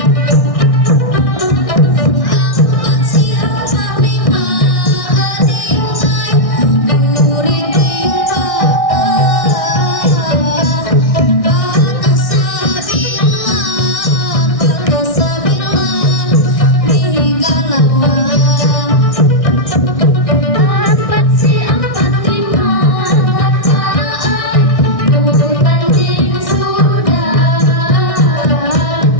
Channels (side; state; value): right; late; 1.6 ms